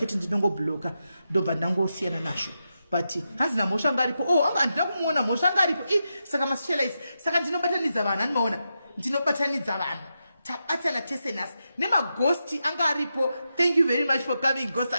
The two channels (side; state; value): both; inverted; correlation -0.87